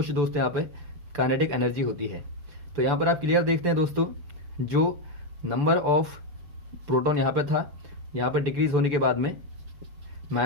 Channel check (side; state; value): left; late; 6.9 ms